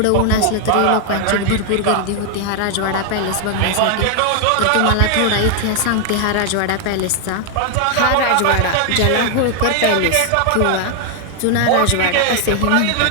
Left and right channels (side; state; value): both; different; correlation 0.00